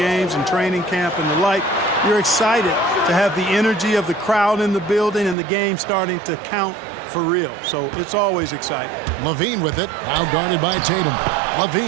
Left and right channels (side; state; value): left; drops out; at 5.4 s